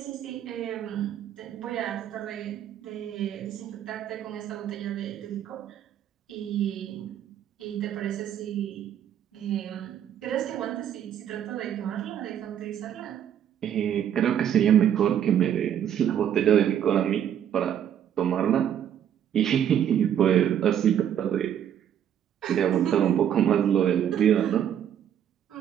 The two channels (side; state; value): left; quieter; 9.7 dB